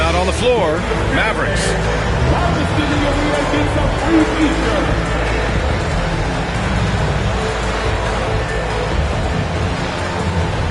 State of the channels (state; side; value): identical; both; correlation 1.00